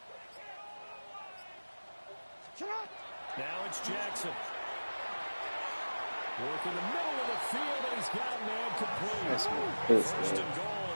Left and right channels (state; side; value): inverted; both; correlation -1.00